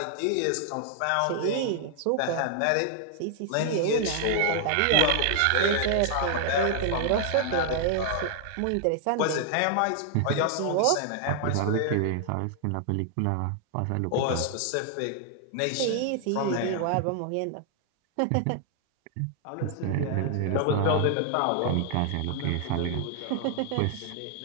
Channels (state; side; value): different; both; correlation 0.00